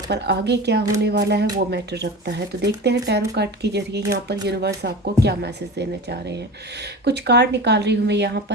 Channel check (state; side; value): normal; both; correlation 0.31